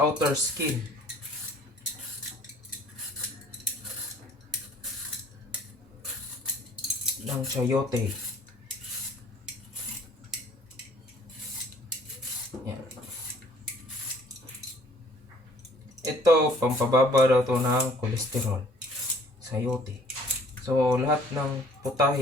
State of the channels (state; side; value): normal; both; correlation 0.57